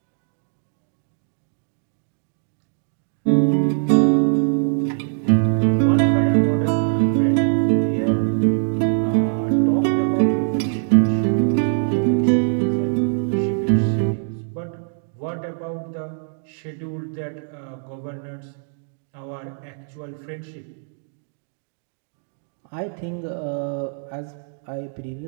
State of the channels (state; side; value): silent; left; digital silence